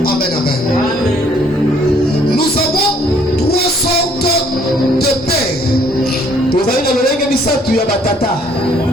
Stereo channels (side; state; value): both; normal; correlation 0.62